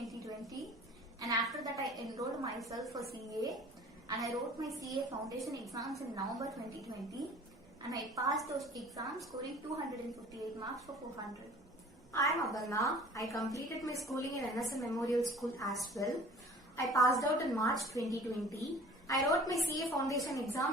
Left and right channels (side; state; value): both; normal; correlation 0.47